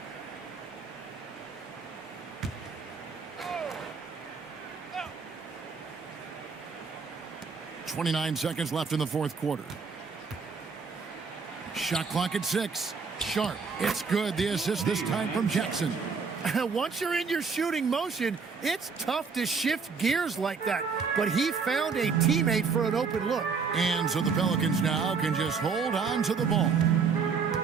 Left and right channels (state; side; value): quieter; left; 5.3 dB